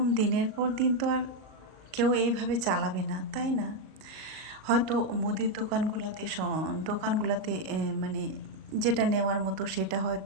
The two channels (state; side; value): late; left; 38 ms